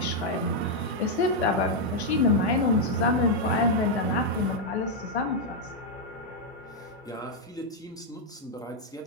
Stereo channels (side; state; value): both; normal; correlation -0.01